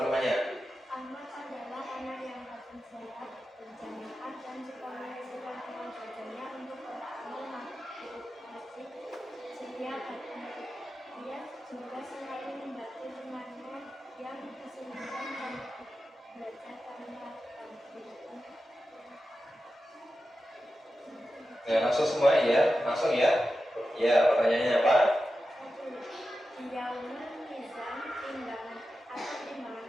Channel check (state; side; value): normal; both; correlation 0.92